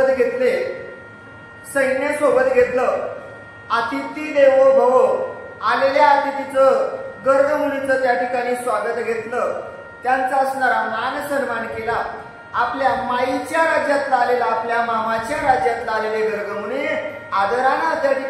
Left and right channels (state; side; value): identical; both; correlation 1.00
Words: घेतले, सैन्य सोबत घेतलं. अतिथी देवो भव, आलेल्या अतिथीचं गर्ग मुनीचं त्या ठिकाणी स्वागत घेतलं, त्यांचा असणारा मान सन्मान केला. आपल्या माईच्या राज्यातला आलेला, आपल्या मामाच्या राज्यातला आलेले गर्ग मुनी आदरानं त्या